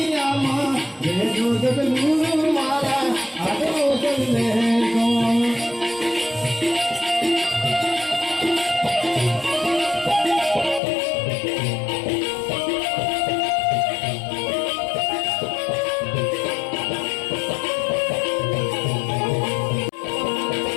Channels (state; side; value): drops out; right; at 10.8 s